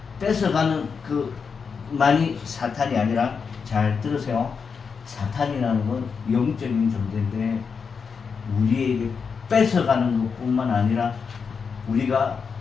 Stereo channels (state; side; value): quieter; right; 5.8 dB